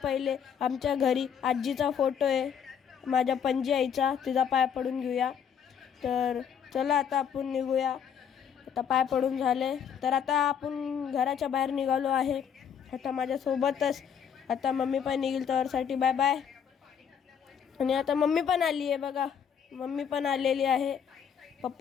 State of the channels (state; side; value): quieter; right; 7.8 dB